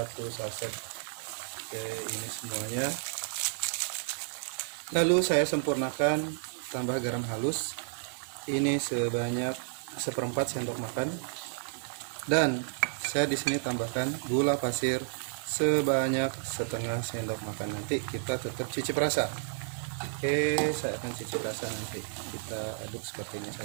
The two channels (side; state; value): left; silent; 57 dB below the other